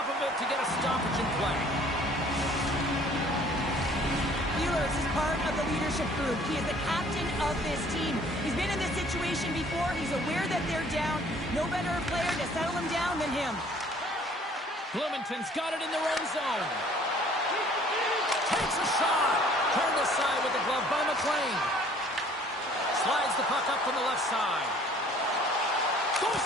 of it to get a stoppage in play. Ehlers is part of the leadership group. He is the captain of this team. He's been in this situation before. He's aware that they're down. No better player to settle them down than him. Bloomington's got it in their own zone. Takes a shot. Turned aside with the glove by McLean. Slides the puck up from the left side. Goes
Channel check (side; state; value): both; normal; correlation 0.55